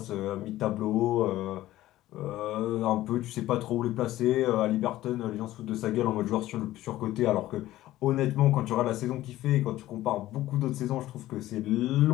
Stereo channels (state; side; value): quieter; right; 15.2 dB